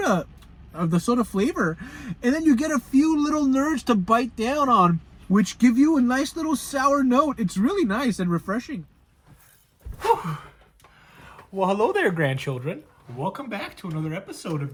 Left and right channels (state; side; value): identical; both; correlation 1.00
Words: flavor, and then you get a few little nerds to bite down on, which give you a nice little sour note. It's really nice and refreshing. Whew. Well, hello there, grandchildren. Welcome back to another episode of